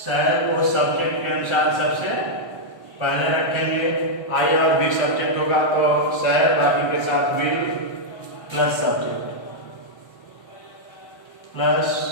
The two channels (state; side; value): late; right; 1.3 ms